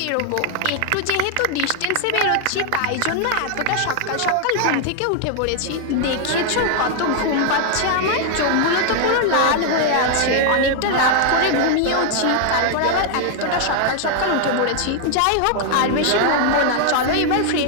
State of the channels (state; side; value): different; both; correlation 0.00